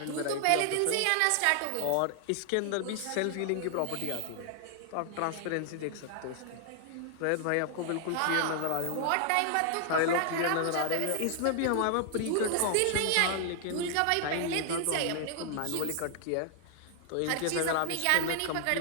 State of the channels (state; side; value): different; both; correlation 0.00